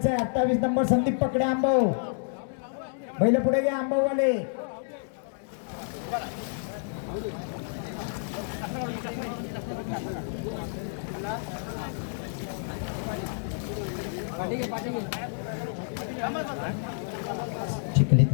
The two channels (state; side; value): silent; right; digital silence